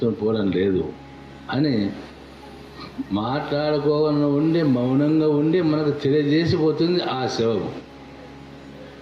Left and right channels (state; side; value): identical; both; correlation 1.00